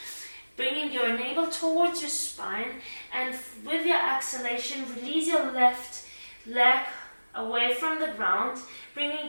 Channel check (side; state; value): both; inverted; correlation -1.00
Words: bringing your navel towards your spine, and with your exhalation, release your left leg away from the ground,